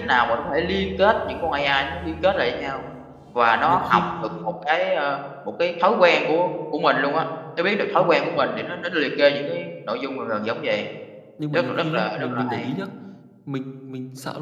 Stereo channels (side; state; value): both; identical; correlation 1.00